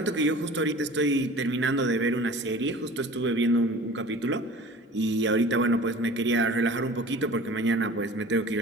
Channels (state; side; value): normal; both; correlation 0.42